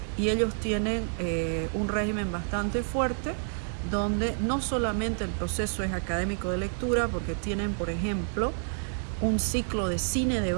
y ellos tienen un régimen bastante fuerte, donde no solamente el proceso es académico de lectura, porque tienen, por ejemplo, un ciclo de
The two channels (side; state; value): left; silent; 59 dB below the other